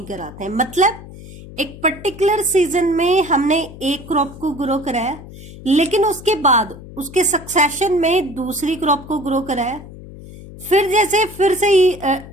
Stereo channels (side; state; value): left; noise; hum, 16 dB below the sound